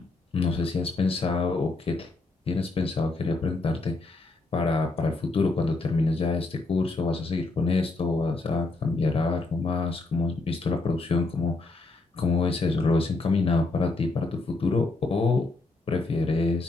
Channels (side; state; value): right; quieter; 3.4 dB